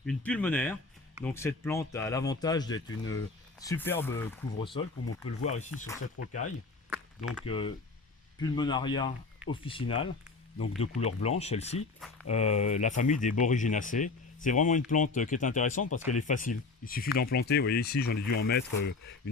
une pulmonaire. Donc cette plante a l'avantage d'être une superbe couvre-sol, comme on peut le voir ici sur cette rocaille. Donc Pulmonaria officinale, donc de couleur blanche celle-ci, la famille des Boryginaceae. C'est vraiment une plante qui est intéressante parce qu'elle est facile. Il suffit d'en planter, vous voyez ici j'en ai dû en mettre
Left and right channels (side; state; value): right; quieter; 3.9 dB